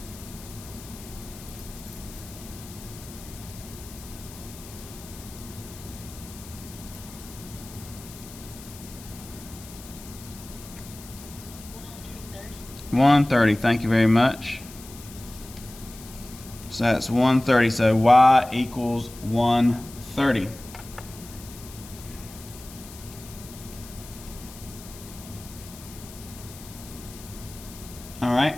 $130. Thank you very much. So that's 130. So y equals 130. All right.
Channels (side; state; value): left; noise; hiss, 17 dB below the sound